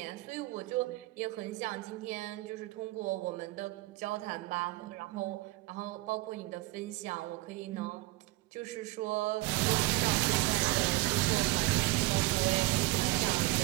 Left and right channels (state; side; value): quieter; left; 19.6 dB